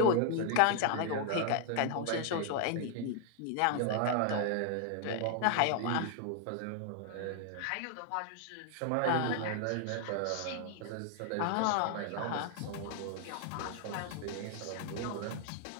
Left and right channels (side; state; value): both; different; correlation 0.00